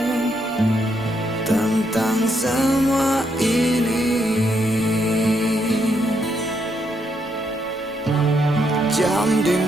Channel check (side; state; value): both; normal; correlation 0.77